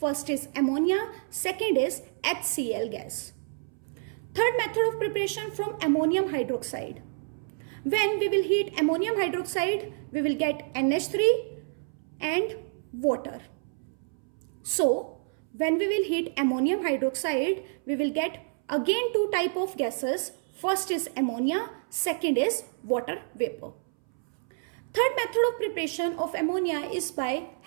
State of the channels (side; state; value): left; silent; 59 dB below the other